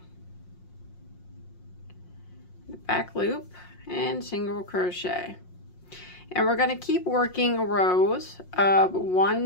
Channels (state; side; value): late; right; 5.6 ms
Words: the back loop, and single crochet. And we're going to keep working rows of